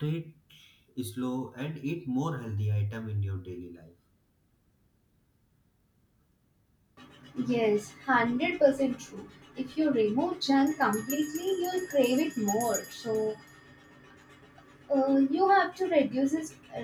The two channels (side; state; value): both; identical; correlation 1.00